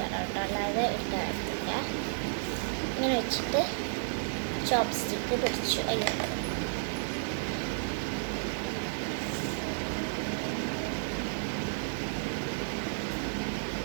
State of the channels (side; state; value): left; silent; digital silence